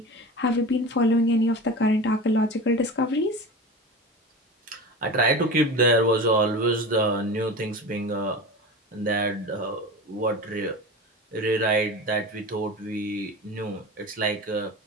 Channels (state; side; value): normal; both; correlation 0.30